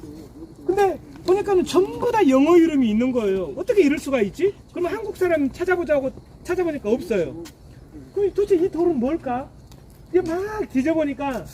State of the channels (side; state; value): both; identical; correlation 1.00